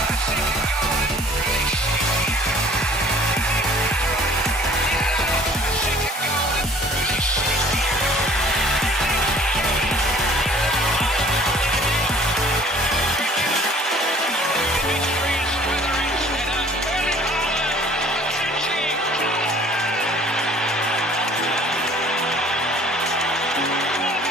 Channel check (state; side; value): normal; both; correlation 0.53